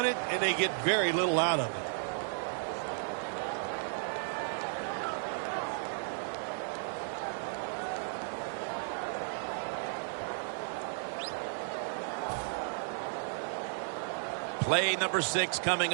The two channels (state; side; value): silent; left; digital silence